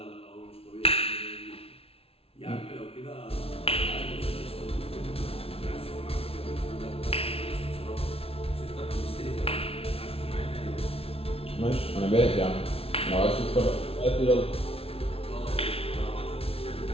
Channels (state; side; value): late; right; 0.28 ms